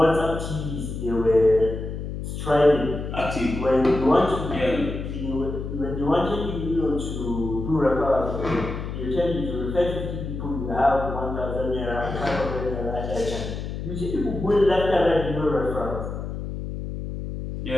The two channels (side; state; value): left; noise; hum, 6 dB below the sound